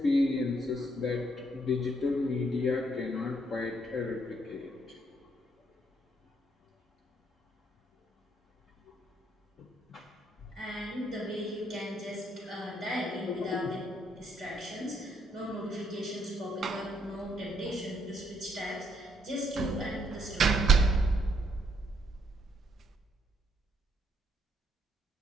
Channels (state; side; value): normal; both; correlation 0.71